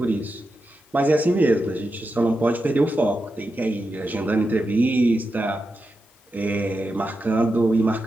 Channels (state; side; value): normal; both; correlation 0.89